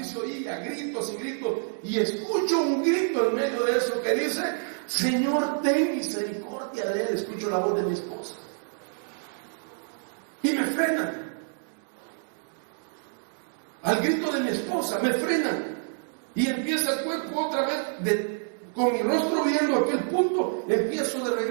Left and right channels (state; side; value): silent; left; digital silence